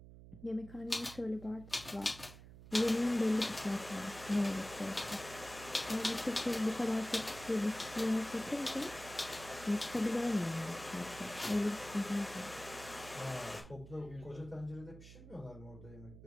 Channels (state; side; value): noise; right; hum, 16 dB below the sound